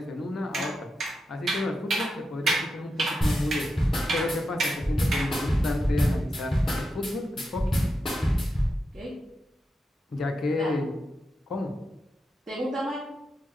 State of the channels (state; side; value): normal; both; correlation 0.88